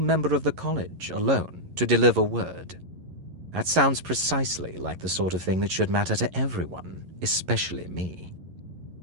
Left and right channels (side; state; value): left; late; 11 ms